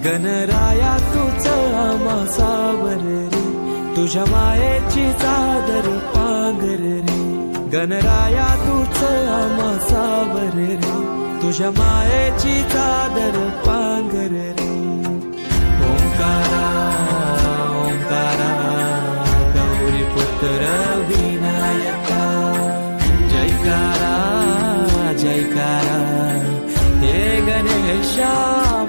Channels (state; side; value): inverted; both; correlation -1.00